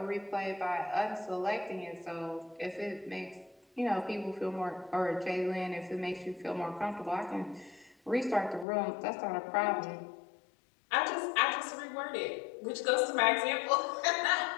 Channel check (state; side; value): drops out; right; at 8.7 s